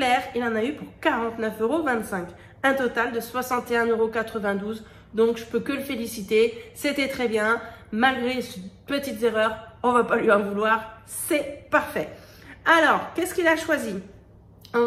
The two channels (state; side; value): identical; both; correlation 1.00